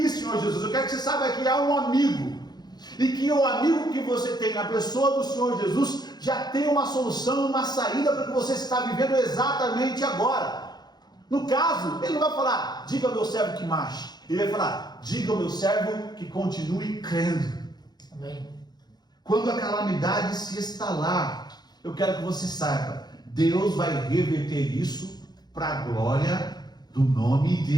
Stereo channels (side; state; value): right; late; 0.20 ms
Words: Senhor Jesus? Eu quero que você saiba que há um amigo, e que o amigo que você tem na pessoa do Senhor Jesus já tem uma solução, uma saída para o que você está vivendo exatamente agora. No caso, ele não vai falar: diga ao meu servo que marche. Ele vai falar: diga ao meu servo que continue crendo. Amém. Quando a calamidade se instalar, eu quero que você saiba, Deus vai reverter isso para a glória do nome